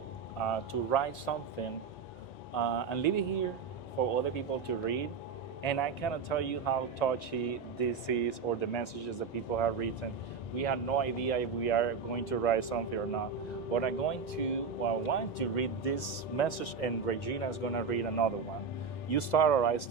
to write something and leave it here for other people to read. And I cannot tell you how touchy this is or the messages that people have written. We have no idea if we are going to write something or not. But I want to read this message, and Regina is going to read another one. You start or I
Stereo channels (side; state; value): left; quieter; 5.5 dB